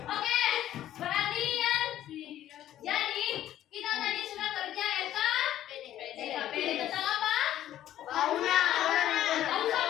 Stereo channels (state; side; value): quieter; right; 12.4 dB